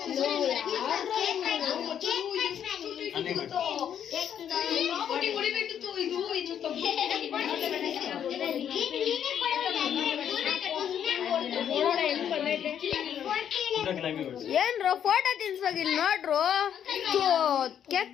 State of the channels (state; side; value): quieter; right; 9.2 dB